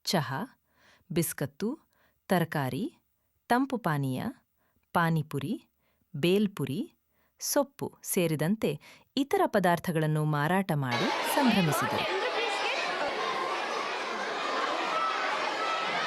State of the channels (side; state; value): both; identical; correlation 1.00